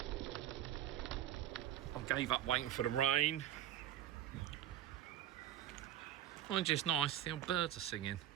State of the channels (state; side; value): quieter; left; 11.9 dB